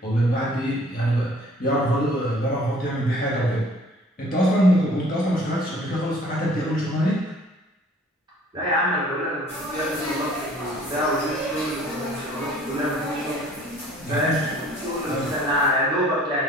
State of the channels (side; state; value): both; normal; correlation 0.53